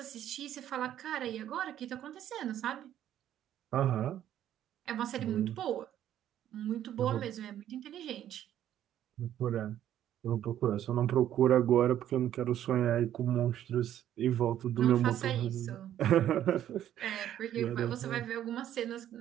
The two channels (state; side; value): quieter; left; 11.3 dB